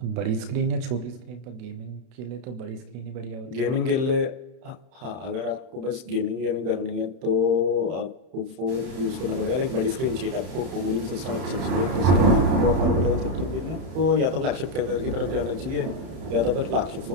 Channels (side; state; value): left; late; 31 ms